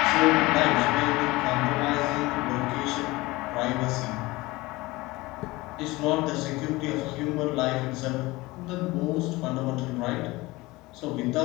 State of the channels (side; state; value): right; quieter; 21.1 dB